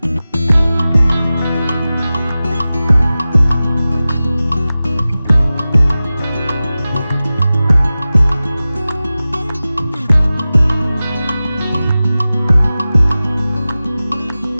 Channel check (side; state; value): both; inverted; correlation -0.96